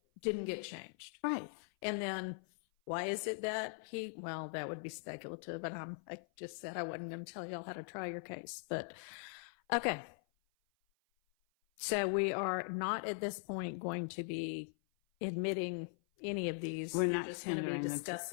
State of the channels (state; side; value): silent; right; 51 dB below the other